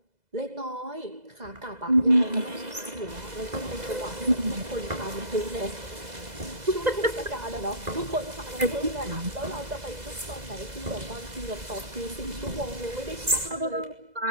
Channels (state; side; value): late; left; 2.0 ms